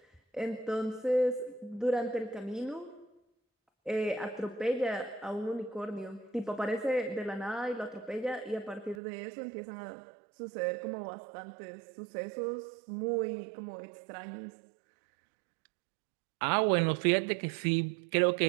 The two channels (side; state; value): left; drops out; at 9.0 s